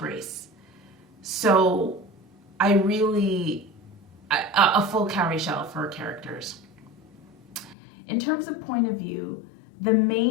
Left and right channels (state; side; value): drops out; right; at 7.8 s